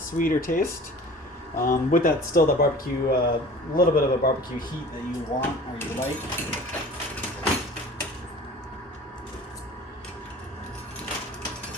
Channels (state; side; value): normal; both; correlation 0.43